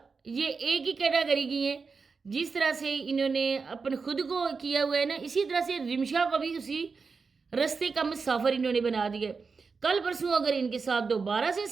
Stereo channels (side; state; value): left; quieter; 4.9 dB